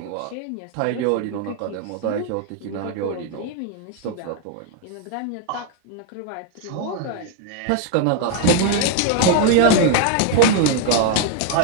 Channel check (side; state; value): both; different; correlation 0.00